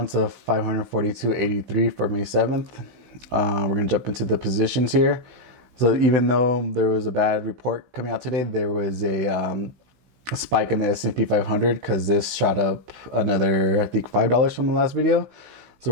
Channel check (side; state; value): left; late; 16 ms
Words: of 542.83 for May 7th. We're going to jump into the positions here. So even though there was a bad report coming out today, there was a spike in the S&P 500 because this shot up another, I think, $5 from the last video. So